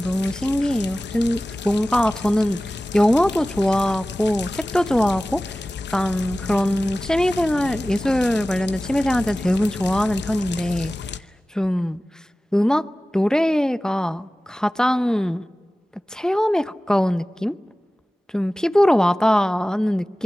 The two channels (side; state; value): both; normal; correlation 0.97